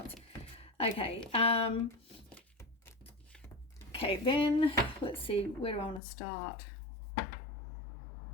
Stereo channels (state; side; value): drops out; right; at 6.0 s